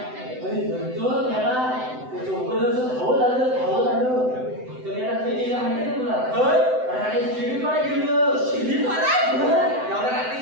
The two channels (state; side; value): late; left; 7.9 ms